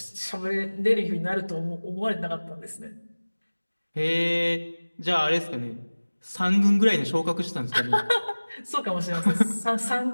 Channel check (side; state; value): both; inverted; correlation -1.00